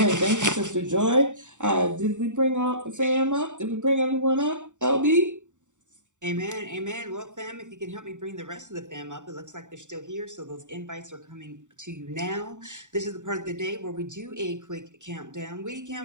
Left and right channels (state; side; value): late; left; 0.85 ms